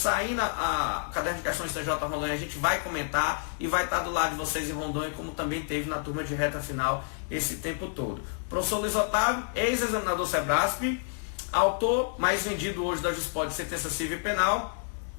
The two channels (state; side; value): silent; right; digital silence